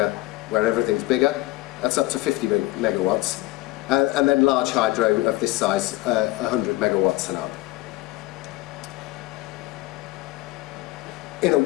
where everything's bigger, that's up to 50 megawatts. And then large hydro of this size, 100 megawatts and up. In a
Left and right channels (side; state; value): right; quieter; 19.5 dB